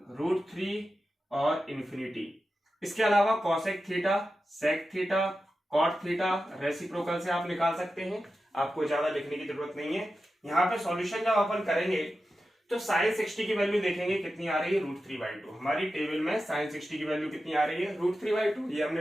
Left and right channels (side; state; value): both; normal; correlation 0.92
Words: √3 और इन्फिनिटी। इसके अलावा cosec theta, sec theta, cot theta reciprocal से आप निकाल सकते हैं, आपको ज्यादा लिखने की जरूरत नहीं है। यहाँ पे सॉल्यूशन जब अपन करेंगे तो साइन 60 की वैल्यू देखेंगे कितनी आ रही है, √3/2। हमारी टेबल में साइन 60 की वैल्यू कितनी आ रही है, √3/2, ये